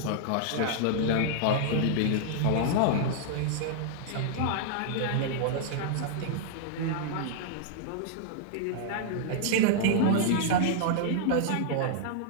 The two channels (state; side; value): different; both; correlation -0.01